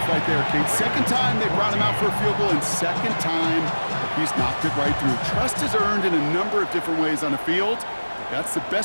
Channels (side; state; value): both; inverted; correlation -1.00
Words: right there, Kate. 2nd time they brought him out for a field goal, and 2nd time he's knocked it right through. Trust is earned in a number of different ways on the field. But that's the